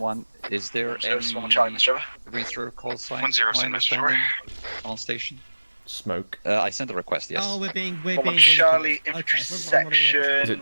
is there any read-through call sign? 1-0, send message over. On station? Smoke. I sent a request, yes. Oh, we're being Charlie, infantry section. Is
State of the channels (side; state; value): both; inverted; correlation -1.00